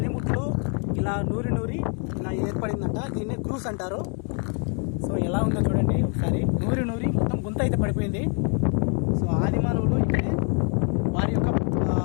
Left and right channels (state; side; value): quieter; right; 39.6 dB